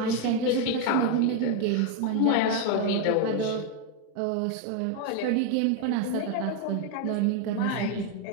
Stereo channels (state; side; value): different; both; correlation 0.01